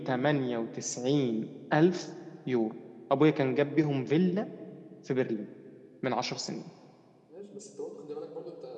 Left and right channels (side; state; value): both; identical; correlation 1.00